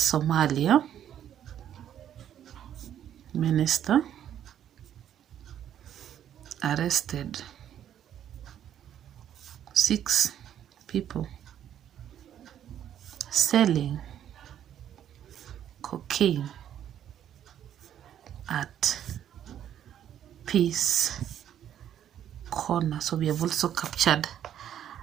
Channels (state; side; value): quieter; left; 10.3 dB